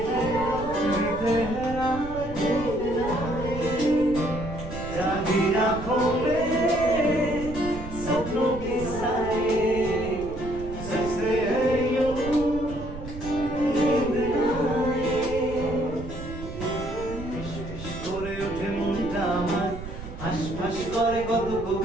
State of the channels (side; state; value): right; noise; rumble, 11 dB below the sound